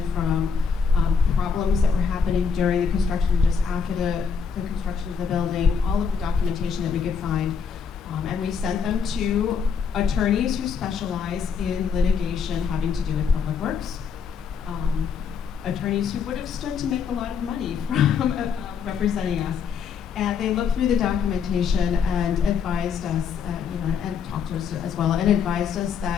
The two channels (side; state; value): right; quieter; 6.3 dB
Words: from problems that were happening during the construction, just after the construction of the building, all of the documentation that we could find. And we sent them to attorneys who specialize in litigation having to do with public works. Attorneys who would have stood to make a lot of money from representing us. And they looked through the documentation and advised us, and talked to us as well, and advised us